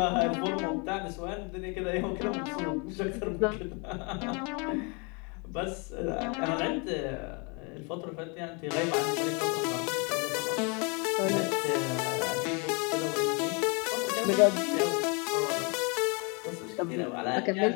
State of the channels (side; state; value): right; quieter; 32.5 dB